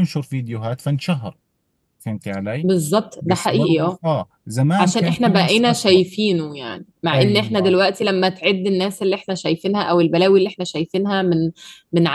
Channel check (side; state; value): both; identical; correlation 1.00